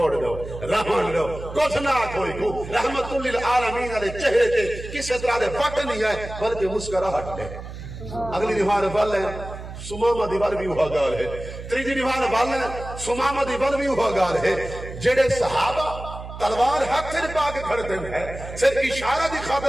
دو رحمان دو کچھ نہ کوئی کو رحمت للعالمین علیہ چہرے کے کسی طرح دے بٹ نہیں ہے بلکہ مسکراہٹ ہے. اگلی دیوار بل ہے سماما دیوار بھی ہوا گال ہے. تریجی دیوار بل ہے سماما دیوار بھی ہوا گال ہے. جڑے صحابہ تلوار ہاتھ سے پا کے کھڑتے ہیں صرف اشارہ دی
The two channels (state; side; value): noise; right; hum, 11 dB below the sound